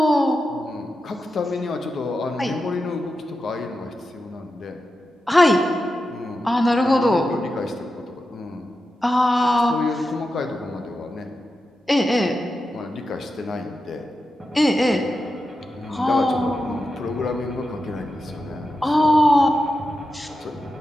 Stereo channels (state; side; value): normal; both; correlation 0.90